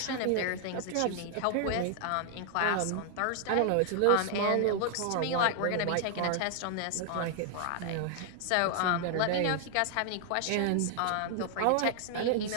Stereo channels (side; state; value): both; different; correlation -0.01